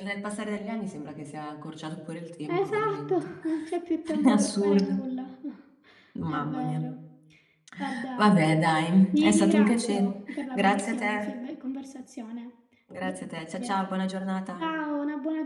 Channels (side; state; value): both; identical; correlation 1.00